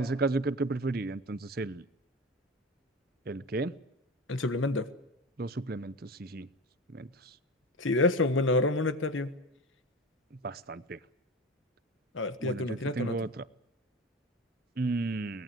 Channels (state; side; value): normal; both; correlation 0.30